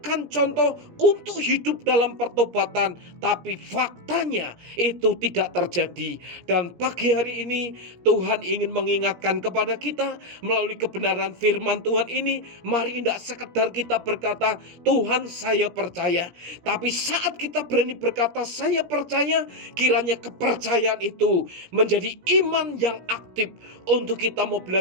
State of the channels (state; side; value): late; left; 17 ms